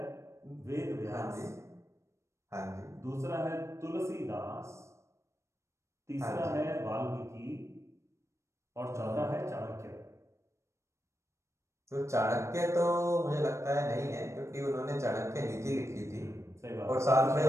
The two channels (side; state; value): left; late; 0.14 ms